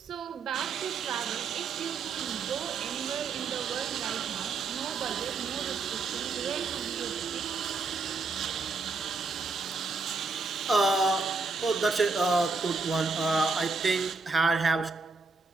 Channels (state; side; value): quieter; left; 4.1 dB